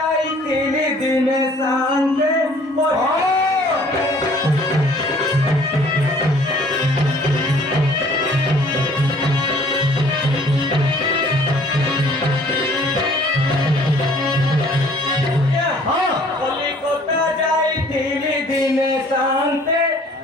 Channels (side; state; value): both; normal; correlation 0.55